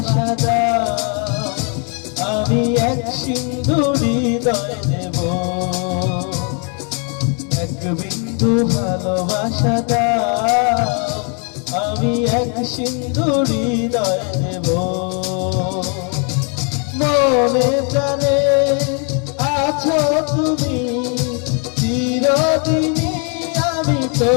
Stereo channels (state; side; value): quieter; right; 38.2 dB